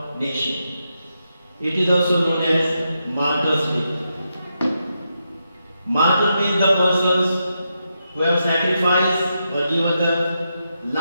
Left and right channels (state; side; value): inverted; both; correlation -0.85